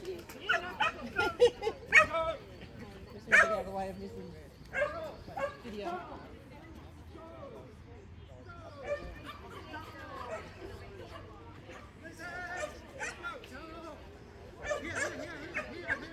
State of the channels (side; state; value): both; identical; correlation 1.00